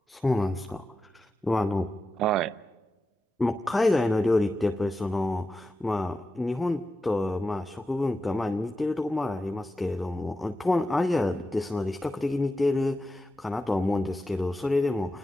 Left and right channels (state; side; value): normal; both; correlation 0.91